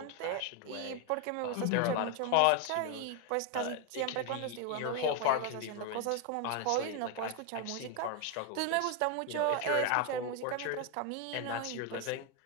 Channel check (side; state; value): both; different; correlation 0.01